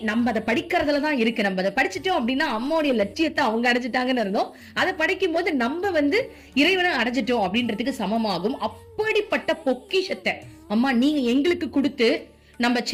நம்ம அதை படிக்கிறதுலதான் இருக்கு. நம்ம அதை படிச்சுட்டோம் அப்படின்னா அம்மாவுடைய லட்சியத்தை அவங்க அடைஞ்சிட்டாங்கன்னு இருந்தோம். அதை படிக்கும் போது நம்ம இறைவனை அடைஞ்சிட்டோம் அப்படின்றதுக்கு சமமாகும். அப்படிப்பட்ட பொக்கிஷத்தை அம்மா நீங்க எங்களுக்கு கொடுத்து, நம்ம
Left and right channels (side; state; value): both; identical; correlation 1.00